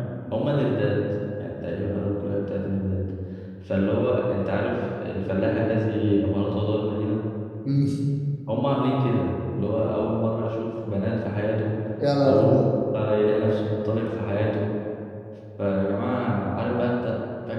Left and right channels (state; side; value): identical; both; correlation 1.00